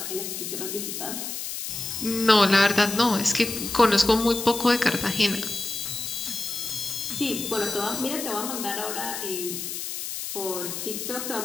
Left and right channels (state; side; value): noise; left; hiss, 6 dB below the sound